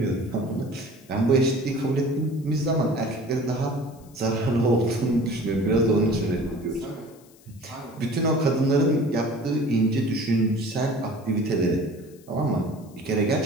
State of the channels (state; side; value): noise; left; hiss, 27 dB below the sound